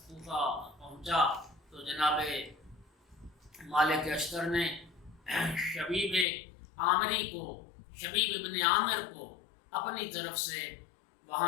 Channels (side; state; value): right; drops out; at 6.2 s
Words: کوفہ پہنچا تو جناب مالک اشتر نے شبیب عامری کو، شبیب ابن عامر کو اپنی طرف سے